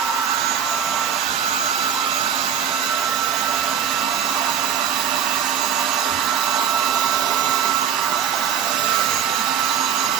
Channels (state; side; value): quieter; left; 8.3 dB